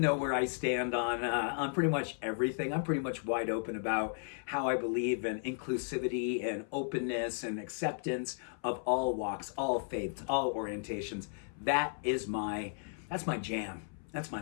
know where I stand on pretty much everything. I'm pretty much wide open about how I believe in inclusivity and openness and acceptance of all walks, all faiths, all orientations. That's my jam. That's my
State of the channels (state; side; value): silent; right; 55 dB below the other